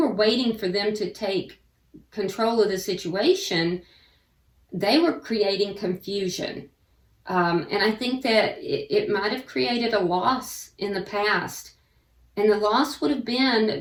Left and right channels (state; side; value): identical; both; correlation 1.00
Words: waiting for them to take control of the situation, they were creating confusion. And I think that it might have created a loss in the past. And the loss would have been